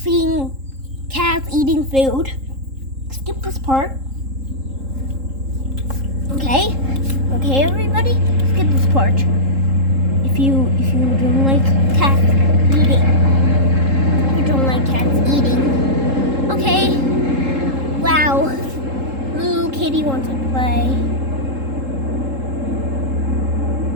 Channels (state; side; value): late; left; 3.7 ms